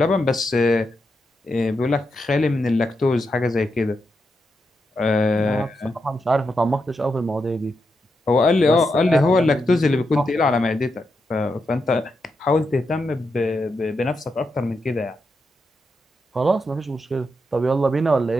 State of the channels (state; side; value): normal; both; correlation 0.85